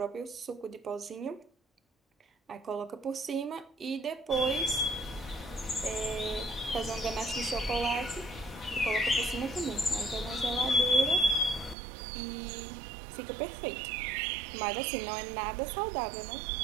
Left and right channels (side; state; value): left; drops out; at 11.8 s